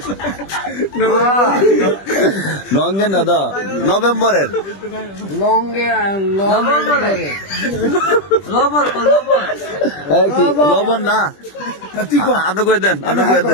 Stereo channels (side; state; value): right; late; 20 ms